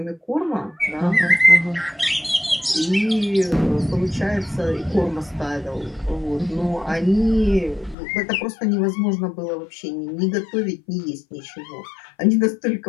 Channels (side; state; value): right; drops out; at 8.0 s